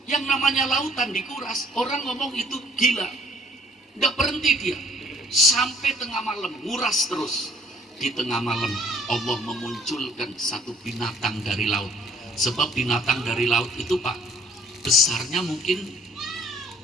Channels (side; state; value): both; normal; correlation 0.58